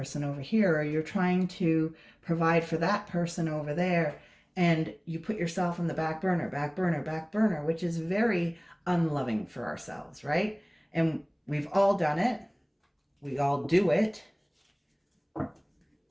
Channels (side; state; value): both; identical; correlation 1.00